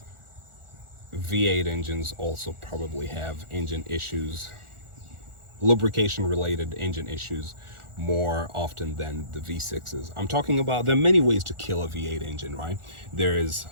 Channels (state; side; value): late; left; 1.4 ms